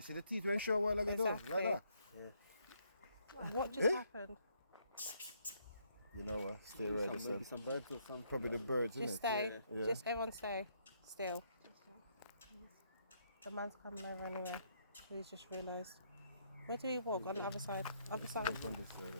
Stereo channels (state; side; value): inverted; both; correlation -0.72